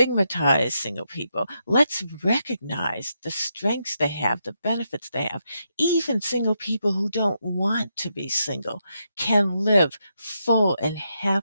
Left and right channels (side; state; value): both; inverted; correlation -0.82